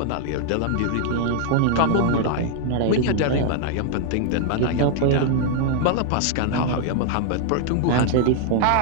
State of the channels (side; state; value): both; different; correlation 0.00